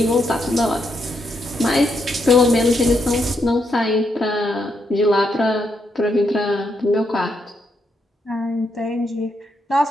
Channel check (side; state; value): both; normal; correlation 0.79